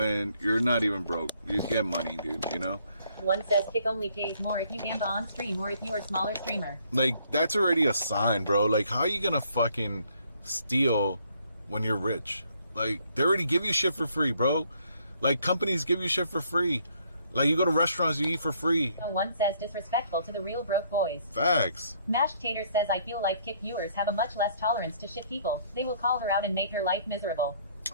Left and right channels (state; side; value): inverted; both; correlation -0.65